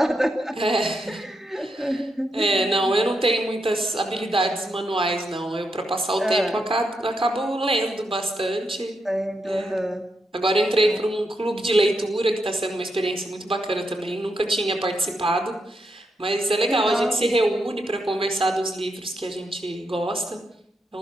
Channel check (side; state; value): both; normal; correlation 0.82